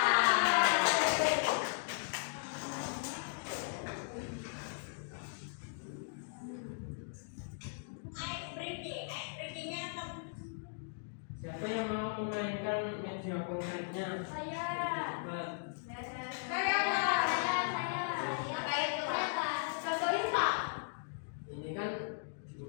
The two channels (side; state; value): right; silent; digital silence